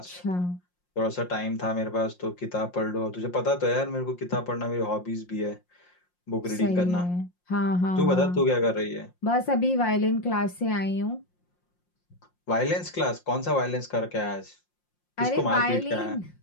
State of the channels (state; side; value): late; right; 5.6 ms